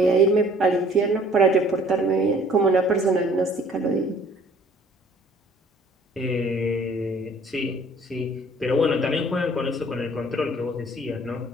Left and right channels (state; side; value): normal; both; correlation 0.55